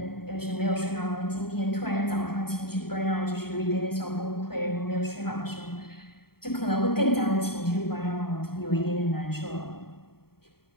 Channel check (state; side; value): late; right; 0.95 ms